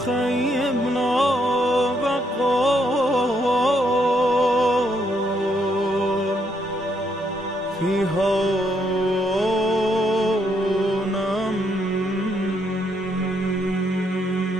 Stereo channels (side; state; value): both; normal; correlation 0.74